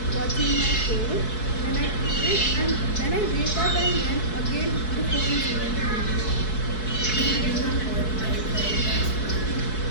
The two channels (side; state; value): right; late; 4.6 ms